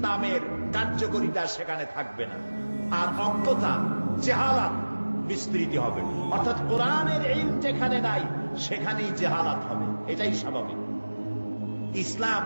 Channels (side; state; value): both; inverted; correlation -1.00